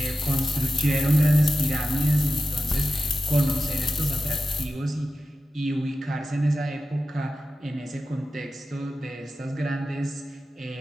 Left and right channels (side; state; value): both; normal; correlation 0.93